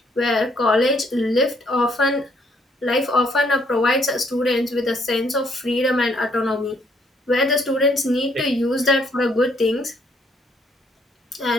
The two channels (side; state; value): both; normal; correlation 0.68